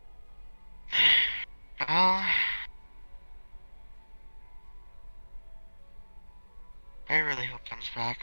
Well, I really hope comes back.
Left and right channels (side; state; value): both; inverted; correlation -1.00